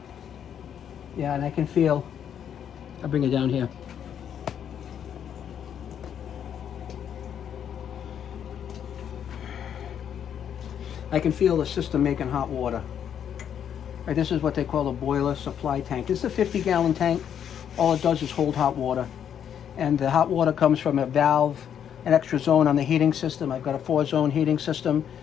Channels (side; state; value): right; quieter; 8.9 dB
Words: Yeah, and I can feel, I'll bring it down here. I can feel the system making hot water. Right, this is what they call a boiler supply tank. This is a 50-gallon tank. All it does is hold hot water. And the hot water comes from a valve, an extra zone on the heating system. I've got a 4-zone heating system.